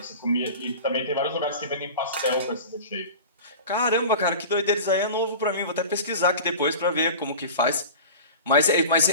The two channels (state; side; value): inverted; both; correlation -0.35